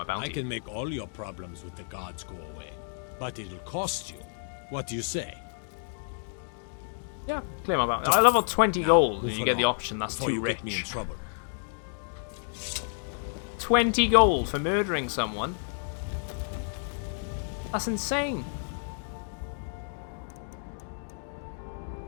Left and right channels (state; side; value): silent; right; digital silence